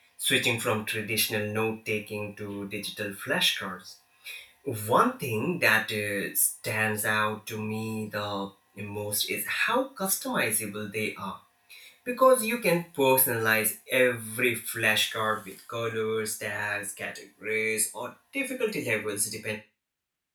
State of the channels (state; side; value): identical; both; correlation 1.00